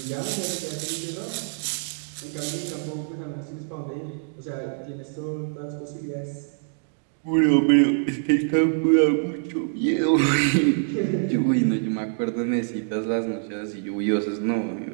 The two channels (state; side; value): silent; left; digital silence